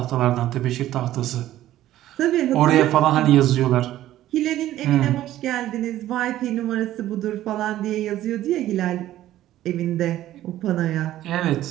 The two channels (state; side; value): quieter; left; 13.7 dB